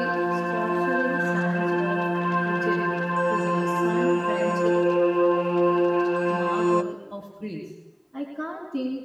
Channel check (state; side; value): identical; both; correlation 1.00